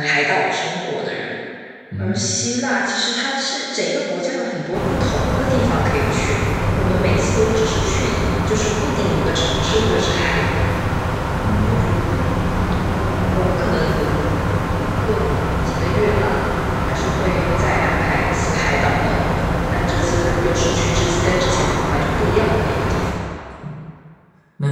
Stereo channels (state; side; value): identical; both; correlation 1.00